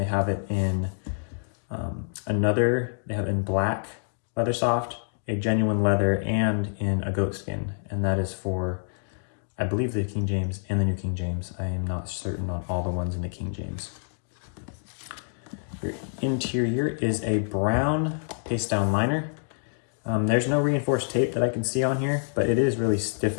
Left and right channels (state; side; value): silent; right; digital silence